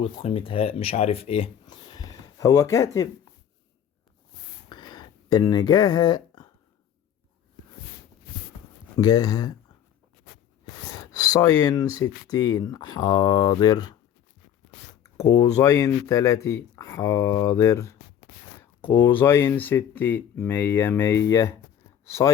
قيمة هاء، مش عارف ايه. هو كاتب ان جاها ساين 60 حاضر. قوسين 30 حاضر. قوسين 60 100.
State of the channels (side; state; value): right; quieter; 9.5 dB